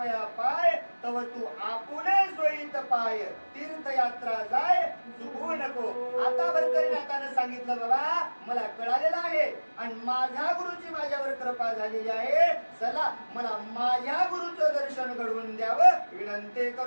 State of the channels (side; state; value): both; inverted; correlation -1.00